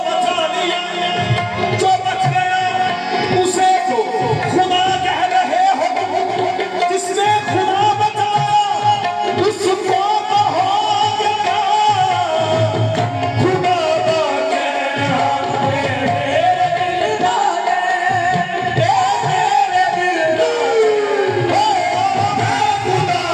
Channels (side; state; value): both; identical; correlation 1.00